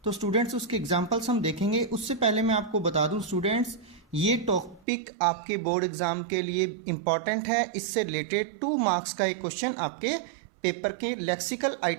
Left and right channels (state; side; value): drops out; left; at 4.9 s